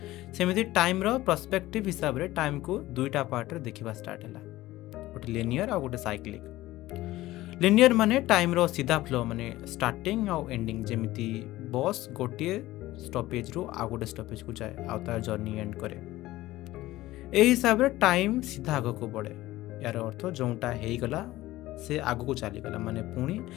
सेमिति टाइम रो पर्सपेक्टिव हिसाब रे टाइम को दुईटा पार्ट रे देखिबा स्टार्ट होला, गोटे लिनियर और गोटे साइक्लिक। लिनियर माने टाइम रो सीधा फ्लो माने स्टार्टिंग और एंडिंग, जेमिति बस गोटे स्टॉपेज रो आ गोटे स्टॉपेज को जाए आ तार जर्नी एंड करे। ए हिसाब रे टाइम सीधा आगो को बढ़े। यार अर्थ जोटा हेई गला से आगो को चली गला माने पुणी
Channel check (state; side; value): quieter; right; 16.8 dB